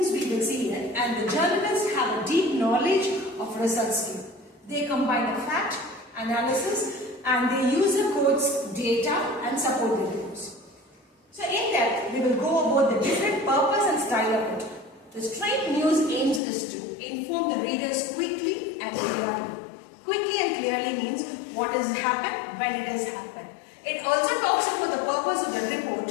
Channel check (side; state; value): right; drops out; at 16.4 s